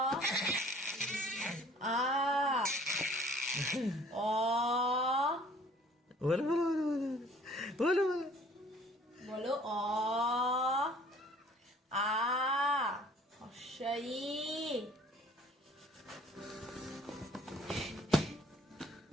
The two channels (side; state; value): both; normal; correlation 0.55